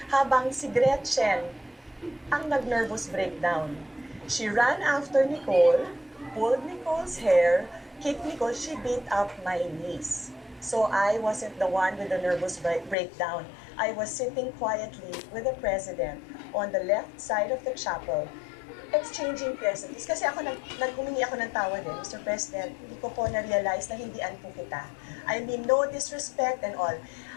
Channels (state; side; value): drops out; right; at 13.0 s